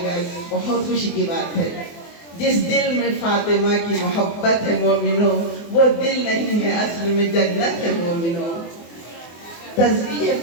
बहुत खुशी की बात है। जिस दिल में फातिमा की मोहब्बत है मोमिनो, वो दिल नहीं है असल में जन्नत है मोमिनो। तस्बीह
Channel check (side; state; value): right; late; 24 ms